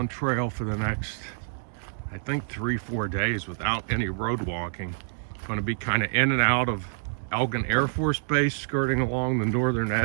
trail for the next, I think 3-4 days without any road walking. Going to be kind of in and out of Elgin Air Force Base, skirting along the northern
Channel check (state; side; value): silent; left; digital silence